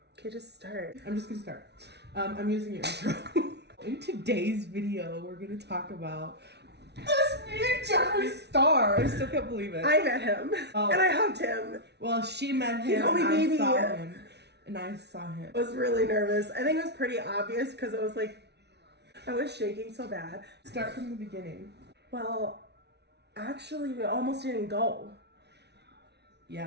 Okay, just start. I'm just gonna start. I'm using your intro. In today's video, we're gonna talk about this new Jeffree star. I still can't believe it. I met him, Oh. and I hugged him. Well, she met him. He called me and baby. I saw him, and I saw him. I was really nervous. I think it was pretty obvious because it was like, I was shaking so bad. Start from the beginning. Well, actually, we almost didn't go.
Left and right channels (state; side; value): late; left; 0.49 ms